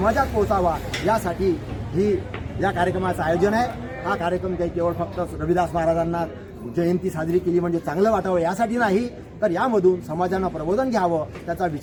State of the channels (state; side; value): identical; both; correlation 1.00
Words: पोहोचावा, यासाठी ही या कार्यक्रमाचं आयोजन आहे. हा कार्यक्रम काही केवळ फक्त रविदास महाराजांना जयंती साजरी केली म्हणजे चांगलं वाटावं यासाठी नाही, तर यामधून समाजानं प्रबोधन घ्यावं, त्याचा